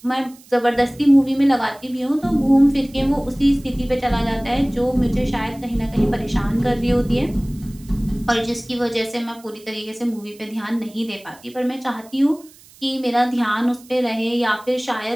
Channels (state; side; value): noise; right; hiss, 25 dB below the sound